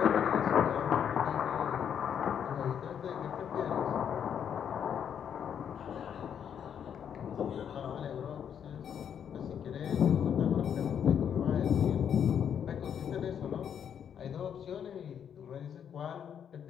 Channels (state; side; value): quieter; right; 8.4 dB